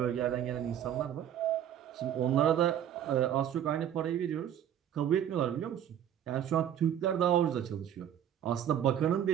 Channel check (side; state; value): left; quieter; 10.2 dB